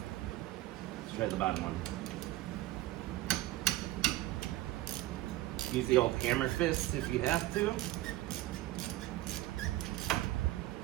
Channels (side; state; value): left; quieter; 16.5 dB